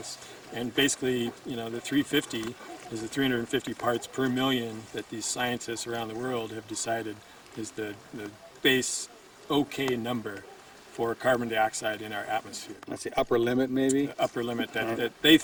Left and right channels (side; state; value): both; identical; correlation 1.00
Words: And basically, the 350 is the 350 parts per million that these scientists around the world have decided is the base okay number for carbon dioxide in our atmosphere. That's the upper limit, maybe? The upper limit that they